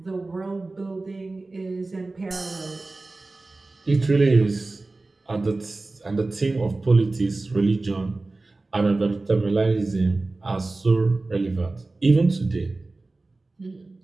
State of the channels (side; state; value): left; quieter; 3.3 dB